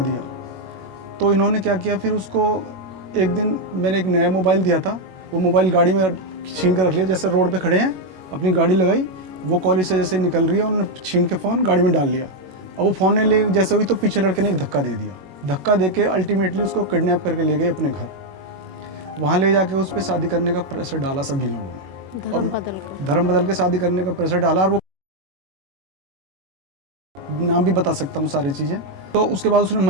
दिया। तो इन्होंने क्या किया, फिर उसको एक दिन मैंने एक नया मोबाइल दिया था, वो मोबाइल गाड़ी में छीन कर रख लिया। जैसे रोड पे खड़े हैं, अपनी गाड़ी लगाई, वो कॉलेज से जैसे निकल रही है, उन्होंने छीन के फ़ोन गाड़ी में डाल लिया। अब वो फ़ोन ने ले जैसे हुई तो पीछे लड़के ने एक धक्का दे दिया। धक्का दे के अल्टीमेटली उसको किडनैप करके ले गए अपने घर। वहाँ ले जाके उस पर शादी करने का प्रेशर डाला सभी लोगों ने, और धर्म बदल के शादी करने का प्रेशर डाला। और वो नाम भी बता सकता हूँ सारी चीज़ें। तो उसके बाद उसने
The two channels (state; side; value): late; left; 21 ms